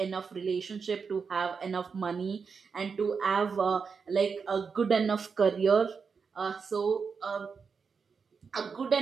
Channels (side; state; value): left; quieter; 5.6 dB